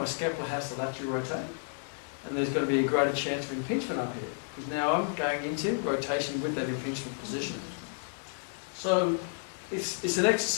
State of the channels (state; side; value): silent; right; 57 dB below the other